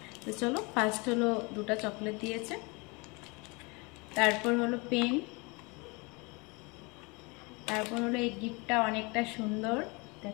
তো চলো, ফার্স্ট হলো দুটো চকলেট দিয়েছে, তারপর হলো পেন, তারপর হলো এই গিফটটা অনেকটা সুন্দর,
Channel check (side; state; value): right; quieter; 28.1 dB